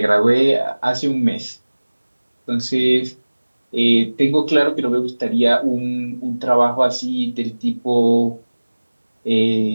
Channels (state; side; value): inverted; both; correlation -1.00